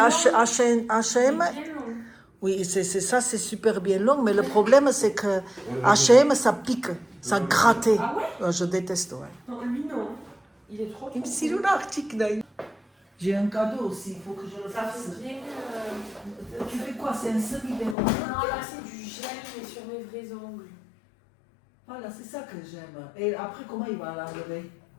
Bien long. Oui, ça, c'est super bien long, mais le problème, c'est que H&M, ça pique, ça gratte. Ah ouais? Je déteste, ouais. Non, lui non. Il est trop. Il me dit, j'ai un cadeau aussi, il faut que je le Ça fasse. fait bien. Tu fais quoi? C'est un semi-béron? Non, là c'est du gel, mais sur mes vrais ongles. Voilà, c'est ça que j'aime. Et après, comment il va l'enlever?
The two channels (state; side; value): drops out; right; at 17.9 s